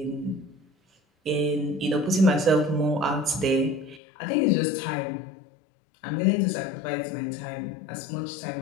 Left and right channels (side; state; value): right; drops out; at 4.0 s